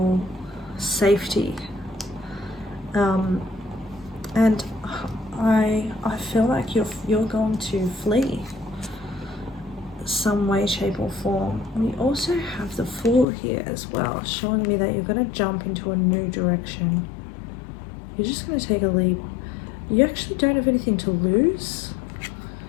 safety. And I feel like you're going to flee some way, shape or form. We also have the Fool here as well, showing me that you're going to jump into a new direction. You're just going to take a leap. You actually don't have anything to lose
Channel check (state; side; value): drops out; right; at 13.2 s